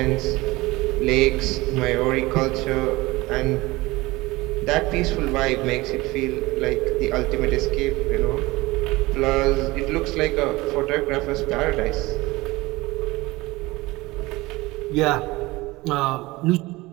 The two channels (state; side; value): quieter; left; 20.9 dB